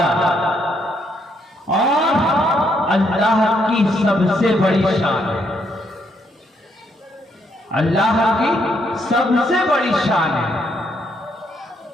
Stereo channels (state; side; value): normal; both; correlation 0.74